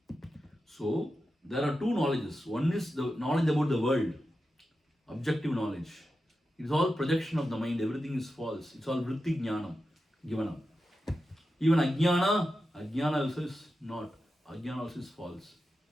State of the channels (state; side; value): normal; both; correlation 0.90